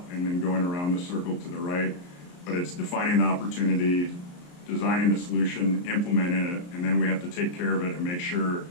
and then going around the circle to the right. But it's defining the opportunity, designing the solution, implementing it, and then we have to take care of it and make sure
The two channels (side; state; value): right; late; 34 ms